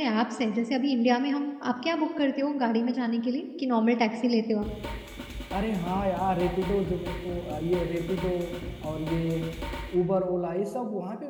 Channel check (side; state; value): both; identical; correlation 1.00